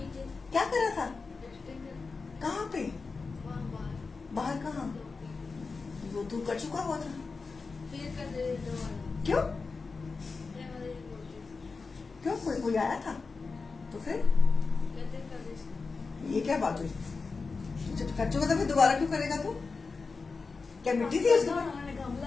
क्या कर रहा था? कहाँ पे? बाहर कहाँ? वो तू कर चुका हुआ था. क्यों क्यों? कोई आया था तो फिर ये क्या बात हुई? जब कर चुका था फिर दोबारा क्यों करेगा तू? क्या मिट्टी थी उसमें?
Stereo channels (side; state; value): right; quieter; 4.4 dB